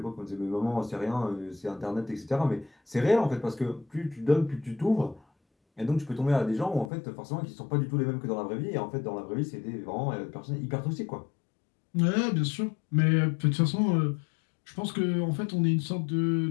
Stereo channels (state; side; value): drops out; right; at 6.9 s